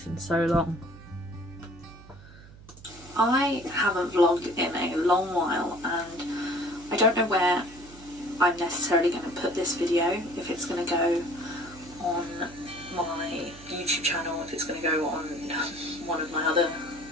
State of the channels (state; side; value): noise; right; hum, 20 dB below the sound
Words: in so long. I haven't vlogged in a long while and I don't know where I'm necessarily going to put this video, if it's going to go on my YouTube channel, if it's going to go on one of my other